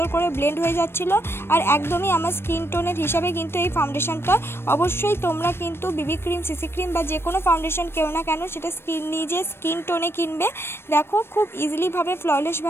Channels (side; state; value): right; late; 0.12 ms